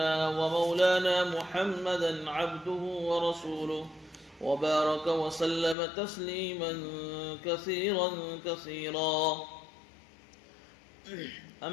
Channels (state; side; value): drops out; right; at 5.8 s